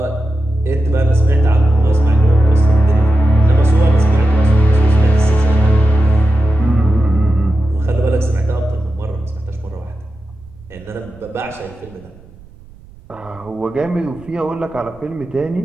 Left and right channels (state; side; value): noise; right; rumble, 24 dB below the sound